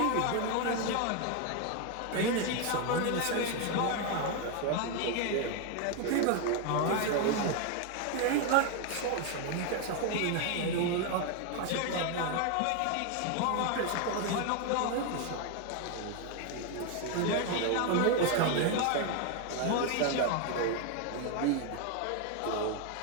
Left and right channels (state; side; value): different; both; correlation 0.01